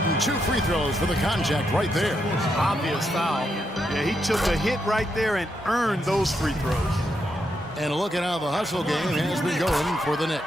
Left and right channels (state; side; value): normal; both; correlation 0.81